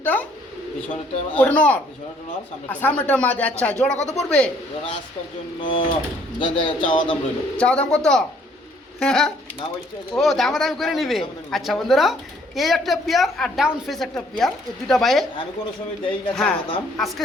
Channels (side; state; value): both; normal; correlation 0.63